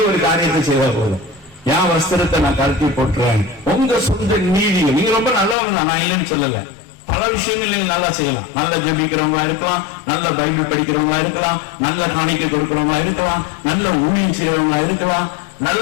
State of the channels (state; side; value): drops out; right; at 5.6 s